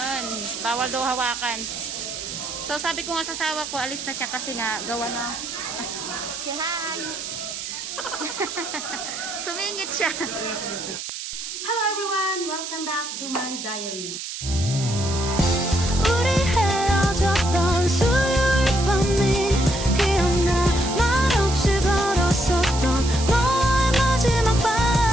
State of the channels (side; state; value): right; noise; hiss, 7 dB below the sound